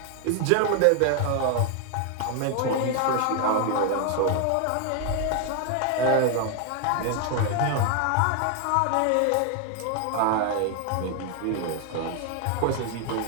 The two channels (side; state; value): both; different; correlation 0.00